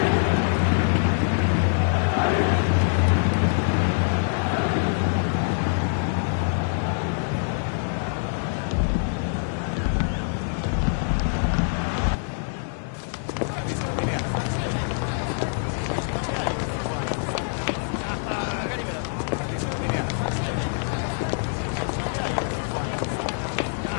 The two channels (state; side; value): silent; right; digital silence